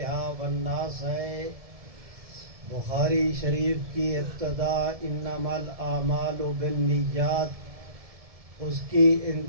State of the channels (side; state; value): left; late; 1.7 ms